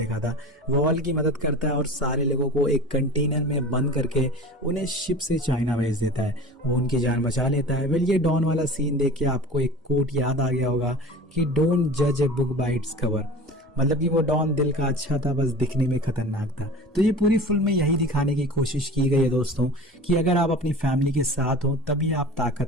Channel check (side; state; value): both; normal; correlation 0.38